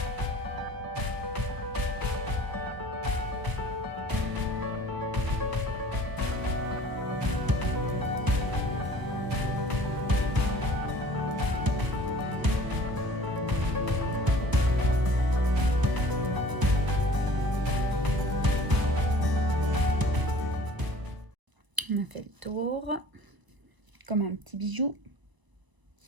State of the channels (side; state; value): left; late; 1.0 ms